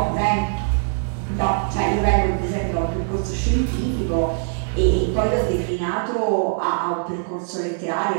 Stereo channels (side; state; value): left; silent; 64 dB below the other